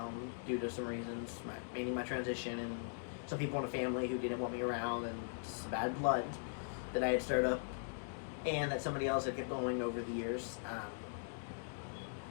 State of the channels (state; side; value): silent; right; digital silence